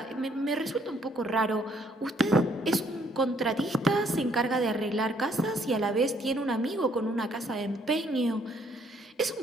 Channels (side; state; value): both; normal; correlation 0.66